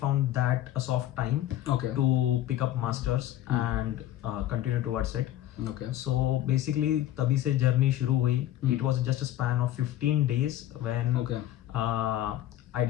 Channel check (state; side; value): quieter; right; 13.3 dB